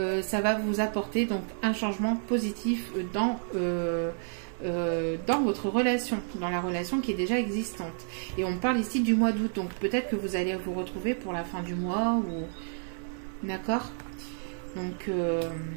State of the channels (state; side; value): silent; left; 58 dB below the other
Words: ça va vous apporter donc un changement positif dans votre relation, dans la relation qui est déjà existante. Et on parle ici du mois d'août, donc peut-être que vous allez vous retrouver pour la fin du mois, ou... D'accord? Donc,